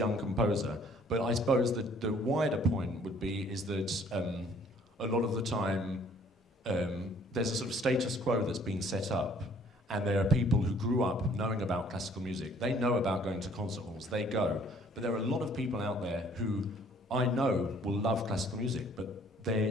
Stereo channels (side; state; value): both; normal; correlation 0.58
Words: composer. But I suppose that the wider point would be is that a lot of the time there's a sort of status quo that's been set up, and there are people who grew up knowing about classical music. They know about going to concert halls. They go, but there are a lot of people out there who I know will love classical music, but